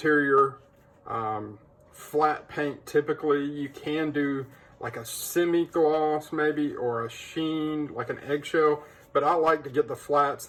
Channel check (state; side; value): identical; both; correlation 1.00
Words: flat paint. Typically you can do like a semi-gloss maybe, or a sheen, like an eggshell, but I like to get the flats.